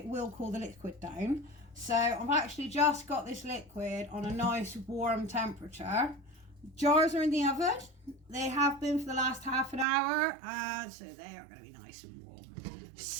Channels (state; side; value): drops out; left; at 9.9 s